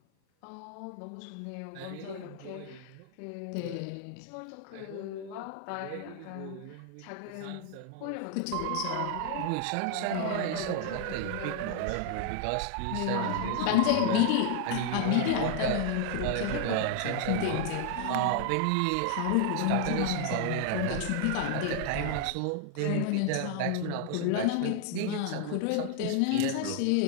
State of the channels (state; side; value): different; both; correlation 0.00